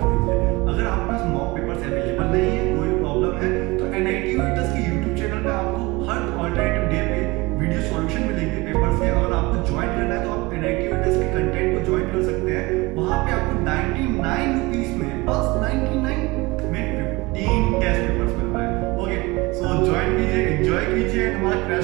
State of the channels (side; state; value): left; quieter; 23.2 dB